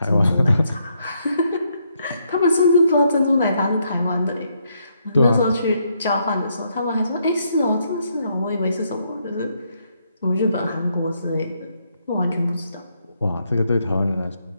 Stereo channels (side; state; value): both; inverted; correlation -0.76